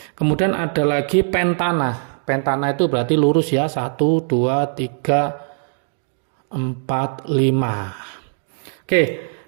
Kemudian ada lagi pentana. Pentana itu berarti lurus ya, 1, 2, 3, 4, 5. Oke,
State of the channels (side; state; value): left; silent; digital silence